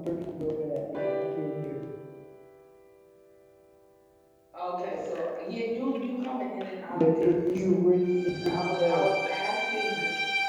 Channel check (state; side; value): identical; both; correlation 1.00